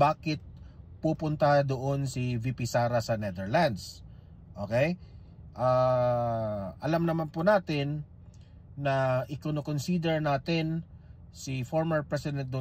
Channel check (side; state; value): both; identical; correlation 1.00